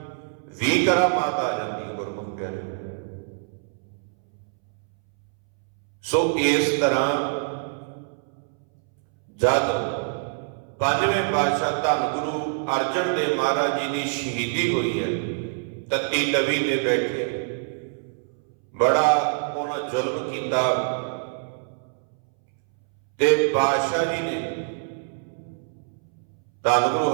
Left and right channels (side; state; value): left; silent; 61 dB below the other